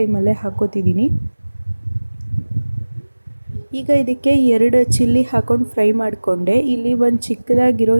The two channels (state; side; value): inverted; both; correlation -1.00